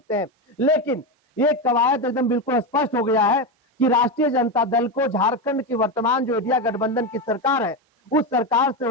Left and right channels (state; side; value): normal; both; correlation 0.13